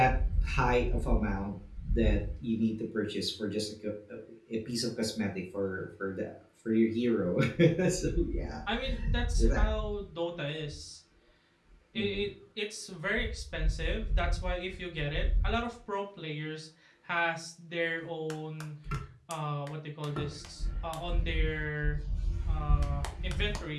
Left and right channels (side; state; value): both; identical; correlation 1.00